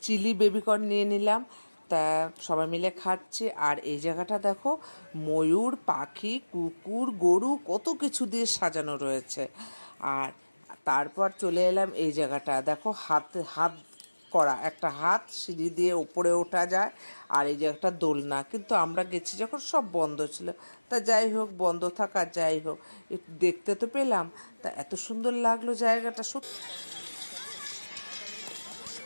চিলি বেবিকর্ন নিয়ে নিলাম। তা সবাই মিলে খাচ্ছি। আর এই জায়গাটা দেখো, ময়ূর পাখি কুকুর গরু কত কিছু দিয়ে সাজানো রয়েছে। আর তারপর চলে এলাম এই জায়গাটা, দেখো হাত হাত করা একটা হাত, সিঁড়ি দিয়ে উপরে ওঠা যায়। আর এই যে একটা দোলনা, কিন্তু আমরা গেছি যখন সব বন্ধ ছিল। তা যাই হোক, বন্ধ থাকা যাই হোক, একটু দেখতে তো পেলাম। তা এত সুন্দর লাগলো জায়গাটা সত্যি।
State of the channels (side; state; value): both; inverted; correlation -1.00